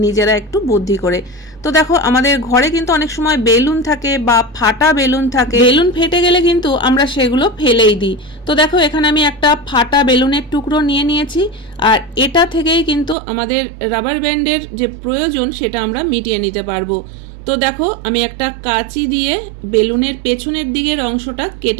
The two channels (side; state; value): left; drops out; at 13.2 s